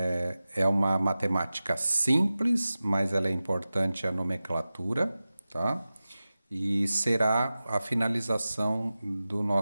uma matemática simples, mas ela é importante a nomenclatura, tá? E será a finalização do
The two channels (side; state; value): both; inverted; correlation -0.95